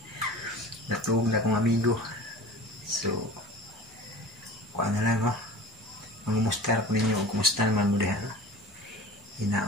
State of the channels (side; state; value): both; normal; correlation 0.39